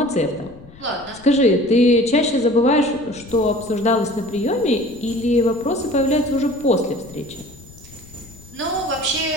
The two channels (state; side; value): noise; left; rumble, 21 dB below the sound